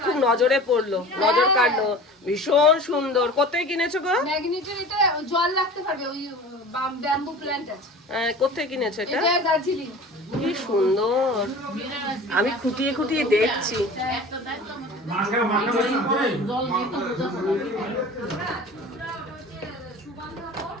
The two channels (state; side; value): normal; both; correlation 0.39